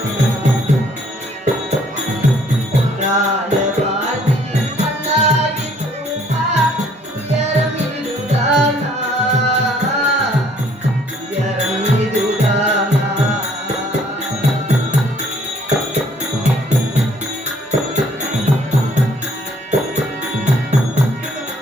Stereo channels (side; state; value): both; normal; correlation 0.61